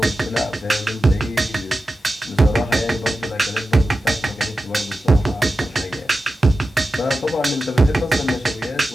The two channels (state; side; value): normal; both; correlation 0.93